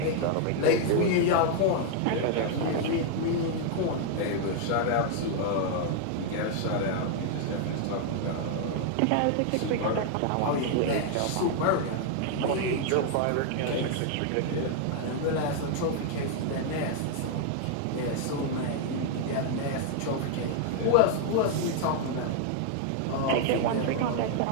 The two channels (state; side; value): different; both; correlation 0.00